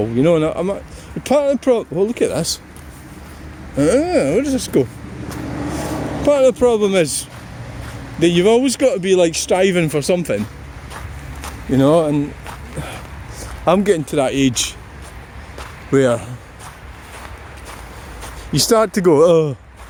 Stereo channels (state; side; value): identical; both; correlation 1.00